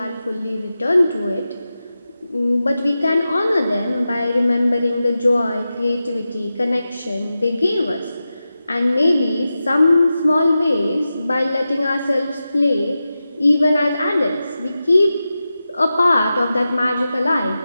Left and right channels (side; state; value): both; inverted; correlation -0.92